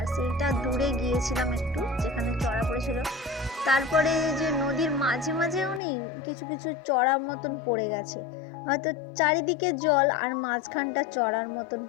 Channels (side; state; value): right; drops out; at 5.8 s